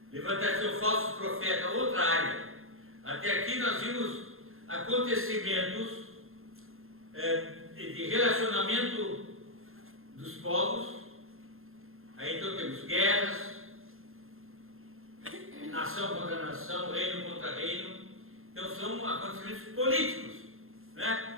Levantar-se um falso profeta, outra área. Até aqui nós vimos acontecimentos de relacionamento dos povos. Aí então temos guerras, nação contra nação, reino contra reino. Então são acontecimentos políticos, né?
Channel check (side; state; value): left; late; 0.61 ms